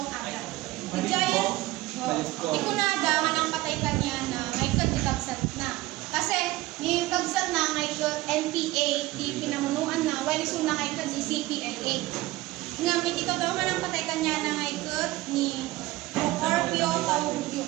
agad. Ijayan, ikunada, manang patay kanya na may kadikagsat na. Kasi, ni kagsat na may NPA, di pinamunuan na, while iso na ngay kad di CPLA. Ngamit ito daw manang patay kanya na ngay ni Procorpio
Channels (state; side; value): quieter; left; 18.3 dB